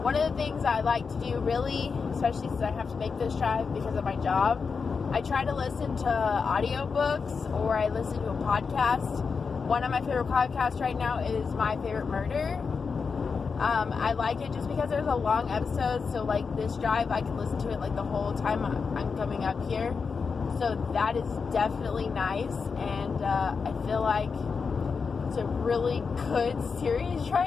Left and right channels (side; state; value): right; quieter; 5.3 dB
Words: One of the things I like to do, really, especially since I have to make this drive because of my job, I try to listen to audiobooks or I listen to a podcast. One of my favorite podcasts right now is My Favorite Murder. I like it just because there's a long episode, so like this drive, I can listen to it like the whole time I'm coming up here. So that is definitely nice, and I feel like it's a really good series